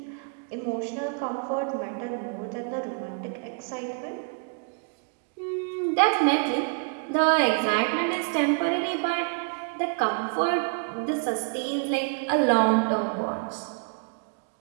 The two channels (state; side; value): quieter; left; 37.8 dB